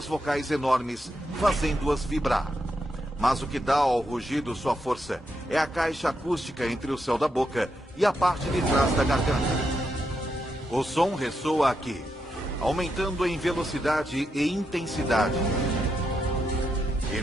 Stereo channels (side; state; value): both; normal; correlation 0.83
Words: vocais enormes, fazendo-as vibrar. Mas o que dá ao rugido sua força é a caixa acústica entre o céu da boca e a parte de trás da garganta. O som ressoa aqui, aumentando em velocidade e intensidade. E